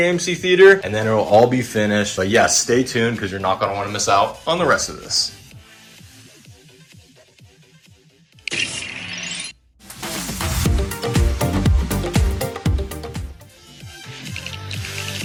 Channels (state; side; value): identical; both; correlation 1.00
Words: theater, and then it will all be finished. But yes, stay tuned because you're not going to want to miss out on the rest of this.